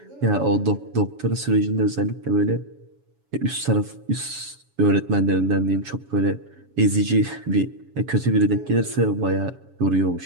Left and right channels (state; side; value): late; left; 7.2 ms